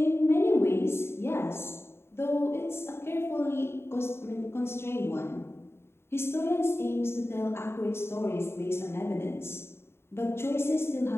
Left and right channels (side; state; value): right; late; 0.12 ms